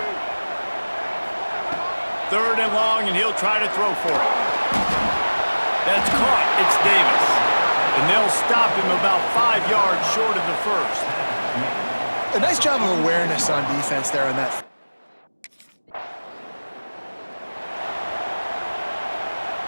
Third and long, and he'll try to throw for it. That's caught. It's Davis. And they'll stop him about 5 yards short of the first. A nice job of awareness on defense there on that.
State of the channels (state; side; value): inverted; both; correlation -1.00